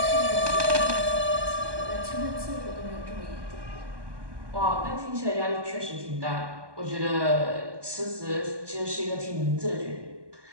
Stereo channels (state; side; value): late; left; 1.2 ms